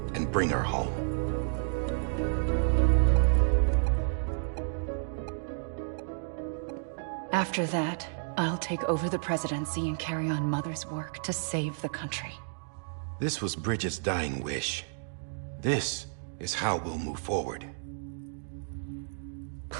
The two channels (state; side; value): silent; left; digital silence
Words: and bring her home. After that, I'll take over the presidency and carry on Mother's work to save the country. This was Bridget's dying wish. This is how we'll move forward.